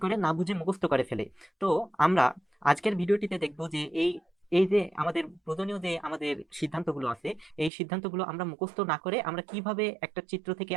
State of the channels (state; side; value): drops out; left; at 7.7 s